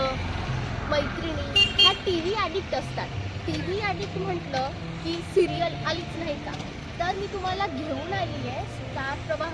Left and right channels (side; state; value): both; identical; correlation 1.00